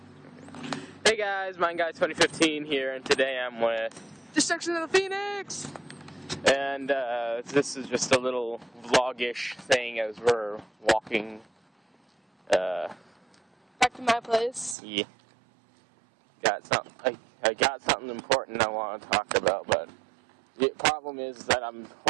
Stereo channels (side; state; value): left; drops out; at 14.8 s